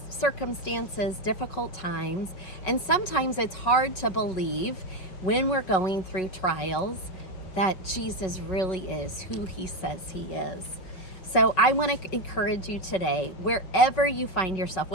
difficult times, and sometimes it's hard to believe when we're going through trials that Jesus really is who he says he is. So I want to encourage you today, wherever you find yourself,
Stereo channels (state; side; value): late; right; 5.4 ms